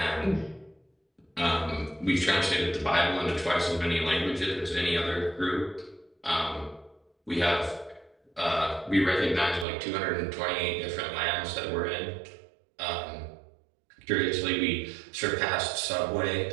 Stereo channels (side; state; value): left; drops out; at 9.7 s